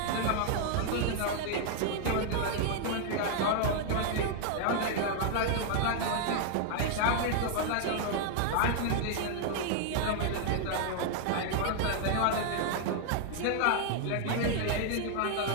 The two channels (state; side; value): different; both; correlation 0.00